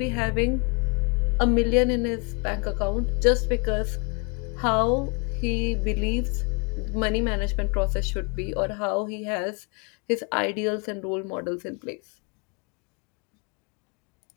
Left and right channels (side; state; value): right; quieter; 32.7 dB